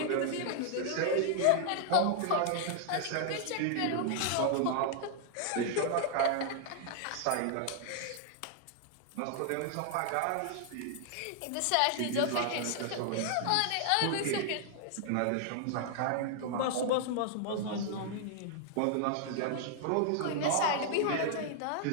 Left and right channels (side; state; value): both; different; correlation -0.01